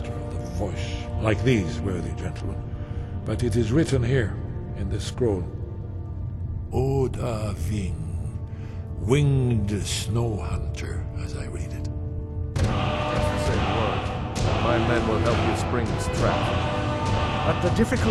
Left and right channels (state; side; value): identical; both; correlation 1.00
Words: of the voice, like these worthy gentlemen, but it is written here in this scroll. Oda Ving, winged snow hunter, as I read it. Say the word. My men will help you spring this trap. But the